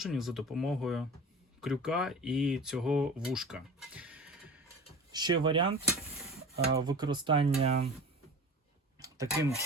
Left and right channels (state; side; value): normal; both; correlation 0.36